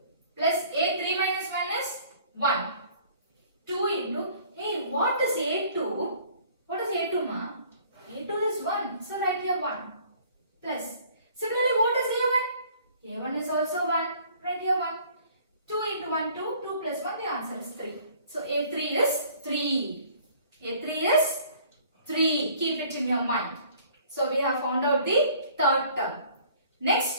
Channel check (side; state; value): both; inverted; correlation -0.55